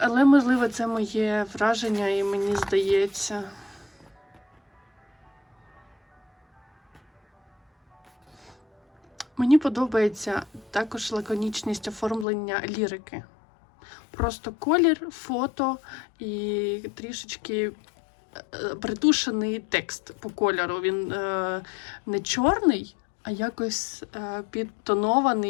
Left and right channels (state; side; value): drops out; right; at 12.2 s